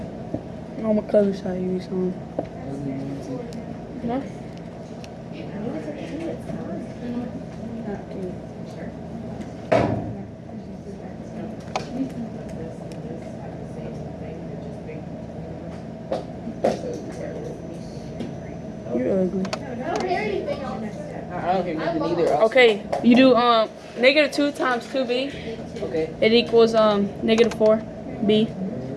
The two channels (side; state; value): both; identical; correlation 1.00